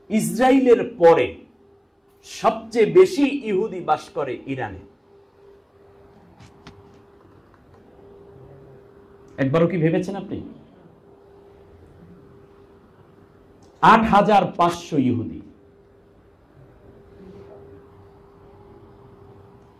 ইসরায়েলের পরে সবচেয়ে বেশি ইহুদি বাস করে ইরানে। একবারও কি ভেবেছেন আপনি? 8,500 ইহুদি।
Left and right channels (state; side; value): identical; both; correlation 1.00